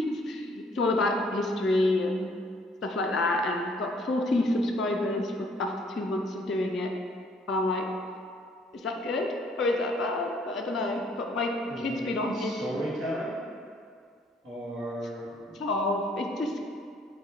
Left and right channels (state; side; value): normal; both; correlation 0.63